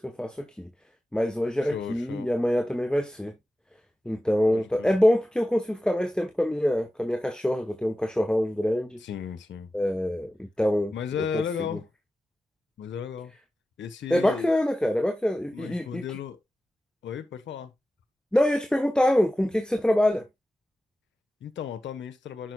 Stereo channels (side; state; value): both; normal; correlation 0.94